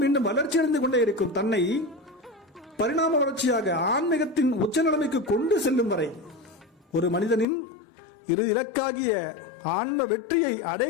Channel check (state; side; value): drops out; right; at 7.5 s